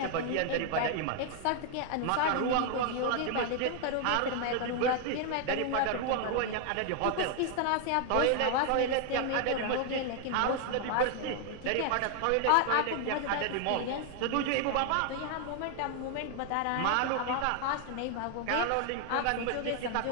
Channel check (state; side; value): different; both; correlation 0.00